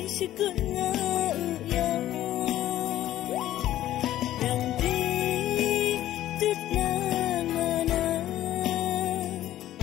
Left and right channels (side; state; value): right; quieter; 13.4 dB